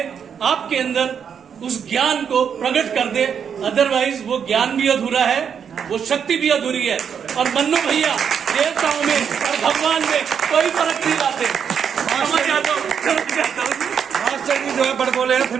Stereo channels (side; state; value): left; quieter; 7.5 dB